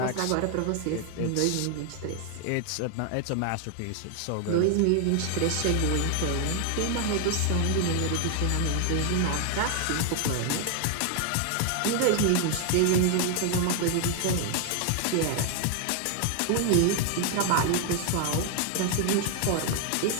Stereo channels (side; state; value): both; different; correlation 0.00